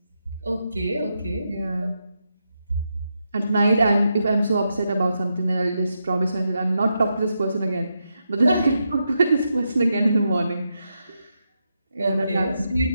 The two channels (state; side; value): inverted; both; correlation -0.84